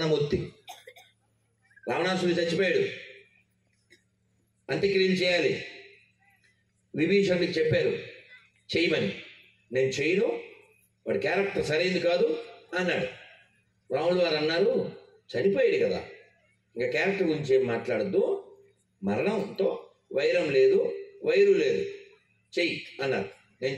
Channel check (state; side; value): identical; both; correlation 1.00